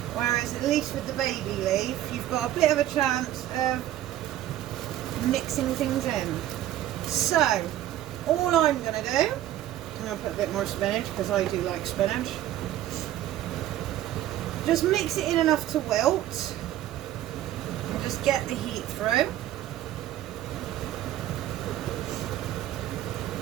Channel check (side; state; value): left; quieter; 13.1 dB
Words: Whereas at least with the baby leaf, you've got a bit of a chance of mixing things in. So all I'm going to do, I'm going to put a bit more spinach because I do like spinach. Just mix it in enough to wilt and just get the heat through.